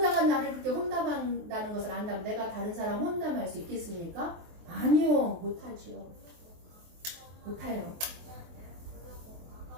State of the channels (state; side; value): late; left; 23 ms